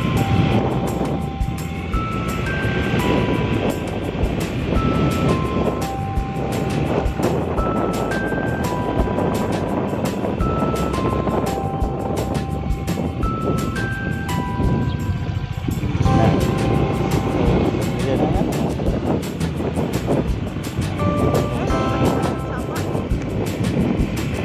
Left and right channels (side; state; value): both; identical; correlation 1.00